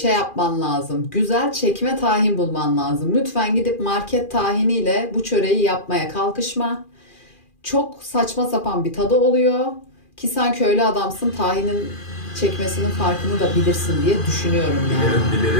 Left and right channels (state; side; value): late; right; 2.4 ms